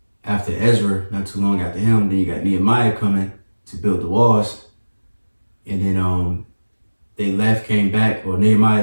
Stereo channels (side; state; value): both; inverted; correlation -1.00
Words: after Ezra, not too long after him, then you got Nehemiah coming to build the walls. And then they left, came back, or